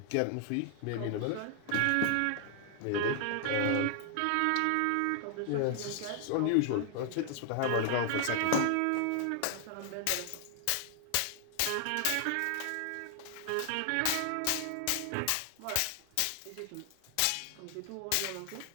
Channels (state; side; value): different; both; correlation 0.00